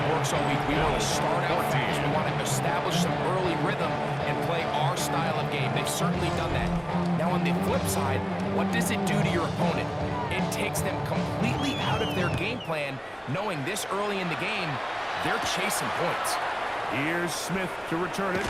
works all week. We want to start out fast. We want to establish some early rhythm and play our style of game. They've certainly done that. Now, on the flip side, what does it do to your opponent? It takes them completely out of their game plan, knowing this early in the game, they're chasing points. Here's Smith to return it.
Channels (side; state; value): both; identical; correlation 1.00